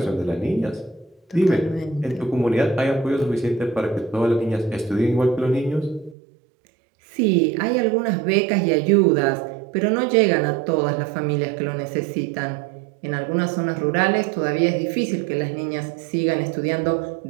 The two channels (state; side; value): drops out; left; at 6.2 s